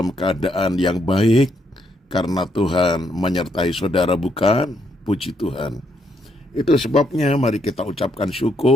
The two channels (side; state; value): both; normal; correlation 0.75